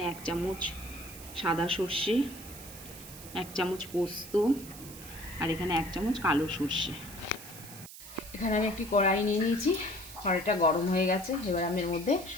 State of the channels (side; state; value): right; noise; hiss, 15 dB below the sound